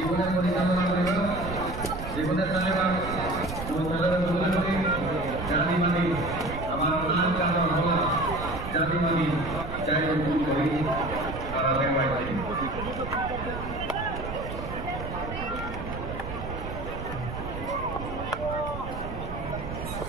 পরিচালনা করিব জীবনে চালিবা জাতি মানি আমার নাম কারণ হল জাতি মানি চাই করি তারা দেওয়াইছে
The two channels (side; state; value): right; noise; rumble, 8 dB below the sound